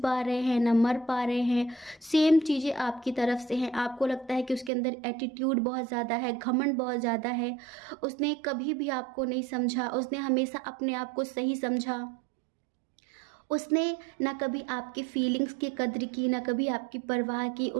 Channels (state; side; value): drops out; left; at 4.7 s